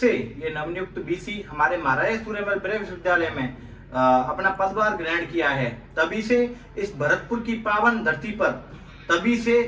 ये नवनियुक्त बीसी हमारे महाराज सूर्यमल ब्रह्म विश्वविद्यालय में अपना पदभार ग्रहण किया है, तभी से इस भरतपुर की पावन धरती पर तभी से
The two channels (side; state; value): both; identical; correlation 1.00